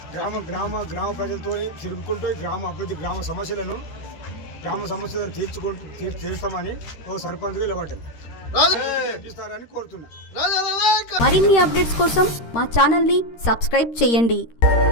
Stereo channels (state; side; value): late; right; 13 ms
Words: గ్రామ ప్రజలతో తిరుగుకుంటూ ఈ గ్రామ అభివృద్ధి, గ్రామ సమస్యలను తీర్చుతామని ఓ సర్పంచ్గా నిలబడ్డాను. కోరుతున్నా. మరిన్ని అప్డేట్స్ కోసం మా ఛానల్ని సబ్స్క్రైబ్ చేయండి.